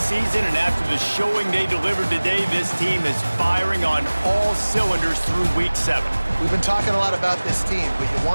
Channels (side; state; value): both; inverted; correlation -1.00